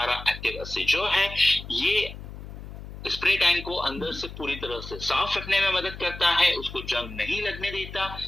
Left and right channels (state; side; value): noise; left; hum, 12 dB below the sound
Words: एक्टिव 80 जो है ये स्प्रे टैंक को अंदर से पूरी तरह से साफ रखने में मदद करता है, उसको जंग नहीं लगने देता,